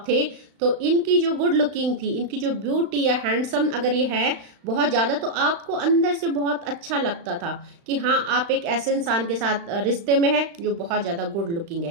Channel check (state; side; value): late; left; 35 ms